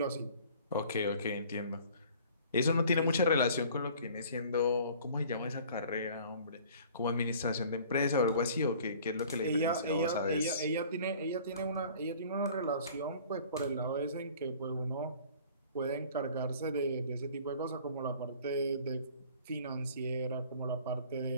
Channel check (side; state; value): both; inverted; correlation -0.50